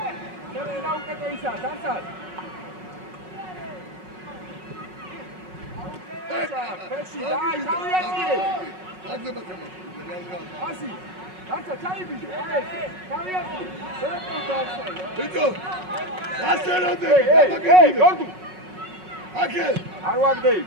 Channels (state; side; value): late; left; 5.4 ms